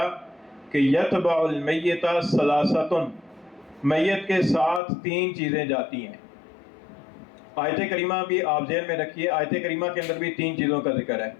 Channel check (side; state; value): right; drops out; at 4.8 s